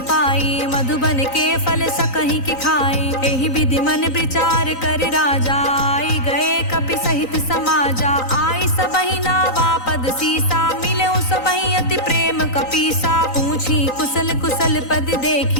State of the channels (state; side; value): late; right; 3.9 ms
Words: पाई, मधुबन के फल सकहि कि खाई। एहि विधि मन विचार कर राजा, आई गए कपि सहित समाजा। आई सबहि नावा पद सीसा, मिले सबहि अति प्रेम कपीसा। पूछी कुशल कुशल पद